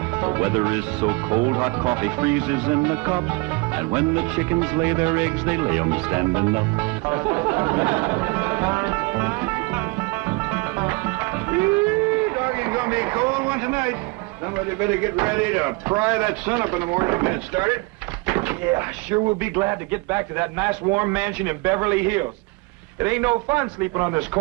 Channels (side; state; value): left; quieter; 26.1 dB